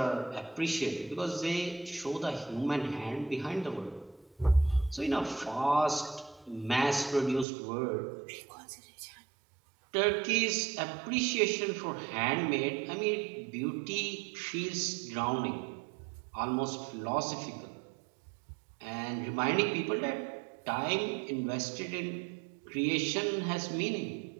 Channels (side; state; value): left; drops out; at 7.5 s